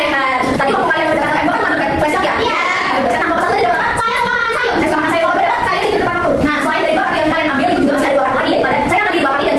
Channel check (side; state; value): both; identical; correlation 1.00